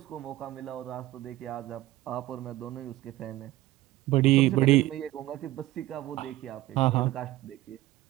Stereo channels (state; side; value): quieter; left; 16.5 dB